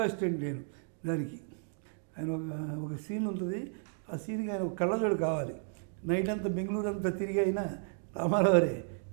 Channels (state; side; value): silent; left; 56 dB below the other